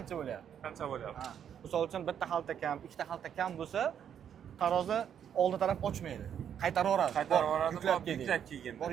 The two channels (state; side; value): quieter; left; 8.9 dB